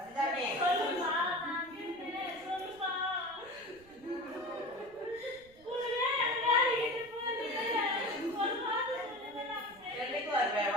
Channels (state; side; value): noise; right; rumble, 26 dB below the sound